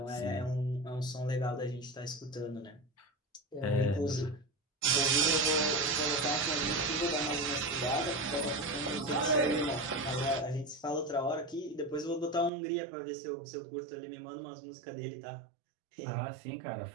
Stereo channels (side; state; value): left; drops out; at 12.5 s